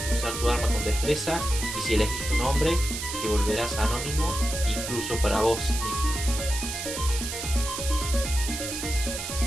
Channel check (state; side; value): noise; right; hiss, 5 dB below the sound